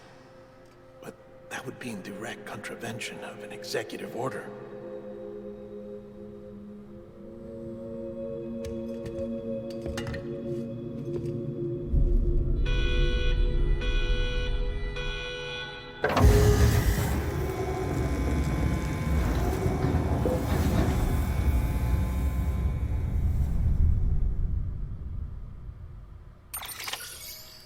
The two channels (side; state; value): both; identical; correlation 1.00